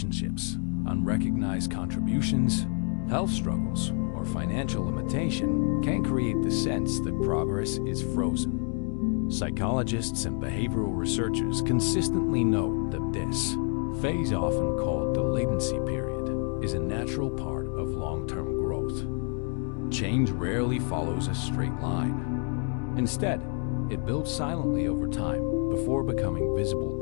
unrecognized contributions, health struggles, or financial limitation can create the sense that progress is frozen. Psychologists and behavioral researchers consistently note that this phase, often called the latency period, is a natural part of long-term growth. Change rarely follows a straight line. Instead, it builds silently over time before becoming visible.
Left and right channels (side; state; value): right; quieter; 39.8 dB